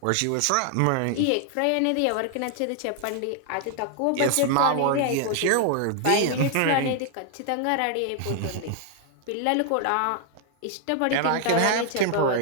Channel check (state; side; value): different; both; correlation 0.00